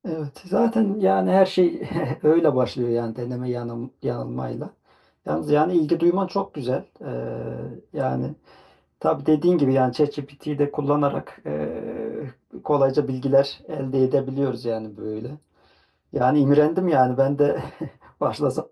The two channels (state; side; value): identical; both; correlation 1.00